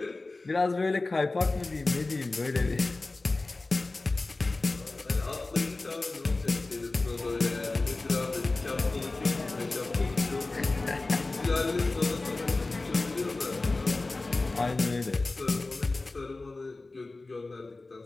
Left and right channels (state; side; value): quieter; right; 3.3 dB